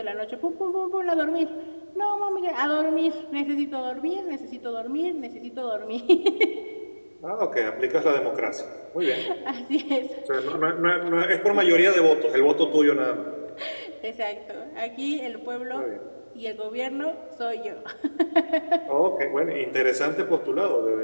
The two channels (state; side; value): inverted; both; correlation -1.00